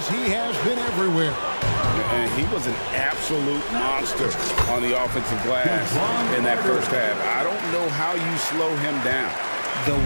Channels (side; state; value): both; inverted; correlation -1.00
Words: he has been everywhere. And he was an absolute monster on the offensive glass in that first half. I don't know how you slow him down.